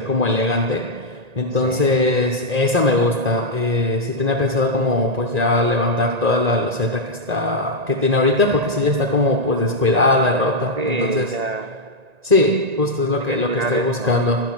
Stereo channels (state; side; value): late; left; 1.9 ms